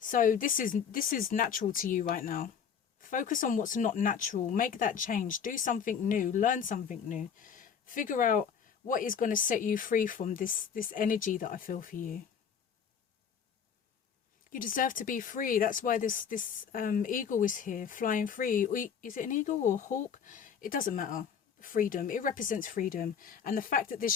this is natural to you right now. Focus on what's not natural. Make that change. Do something new. Learn something new. Figure out what is going to set you free from this energy that I feel for you. You deserve to be free. That's why this eagle is here, flying free. Is it an eagle or a hawk? It doesn't matter. Freedom. It represents freedom. And the fact that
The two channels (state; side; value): quieter; right; 7.3 dB